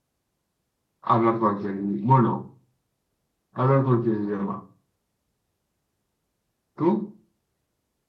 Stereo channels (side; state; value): both; identical; correlation 1.00